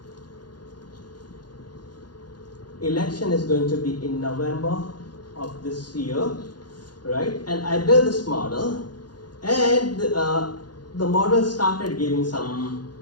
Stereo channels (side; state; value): right; late; 0.70 ms